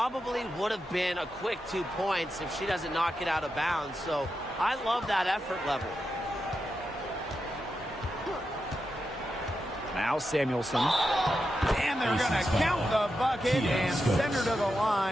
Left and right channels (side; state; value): both; normal; correlation 0.88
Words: would have been a quick 2 points if she doesn't knock it out of bounds. So I love that effort level. Now Samuelson. And they're going to count the bucket and send her to the